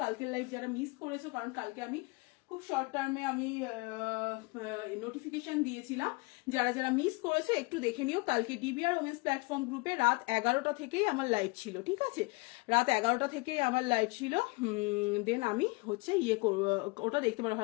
কালকের লাইভ যারা মিস করেছো, কারণ কালকে আমি খুব শর্ট টার্মে আমি নোটিফিকেশন দিয়েছিলাম, যারা যারা মিস করেছে একটু দেখে নিও। কালকে ডিবিআর ওমেন্স প্ল্যাটফর্ম গ্রুপে রাত 11টা থেকেই আমার লাইভ ছিল, ঠিক আছে, রাত 11টা থেকেই আমার লাইভ ছিল। দেন আমি হচ্ছে ওটা দেখতে পারো।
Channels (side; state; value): right; quieter; 26.7 dB